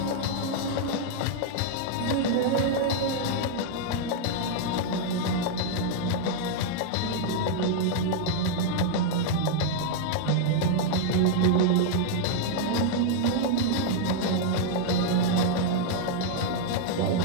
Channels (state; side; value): different; both; correlation -0.01